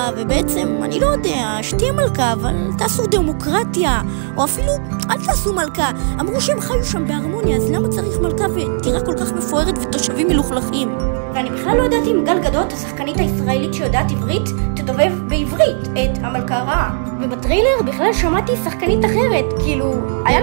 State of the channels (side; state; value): left; silent; digital silence